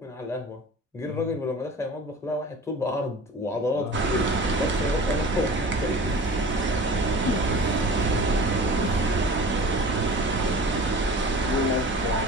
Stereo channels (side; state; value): both; normal; correlation 0.39